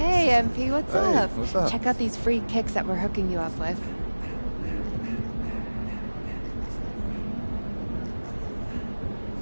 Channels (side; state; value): both; inverted; correlation -1.00